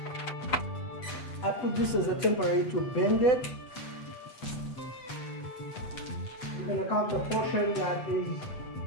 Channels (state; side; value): late; right; 8.0 ms